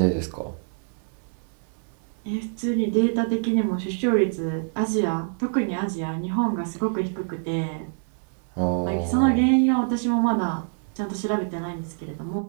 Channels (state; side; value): silent; left; 61 dB below the other